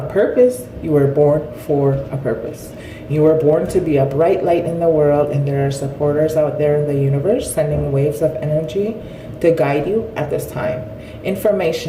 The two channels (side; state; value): both; identical; correlation 1.00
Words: purpose, you were born for a purpose. You were born to be a bright light in the world, and there are supporters out there in the universe sending waves of energy to guide you at this time.